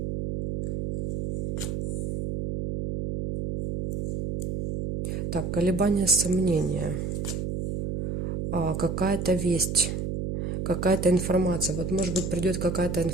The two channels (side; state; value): right; noise; hum, 2 dB below the sound